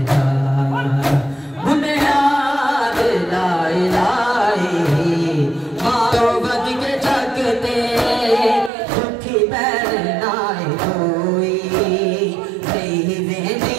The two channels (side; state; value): left; drops out; at 8.7 s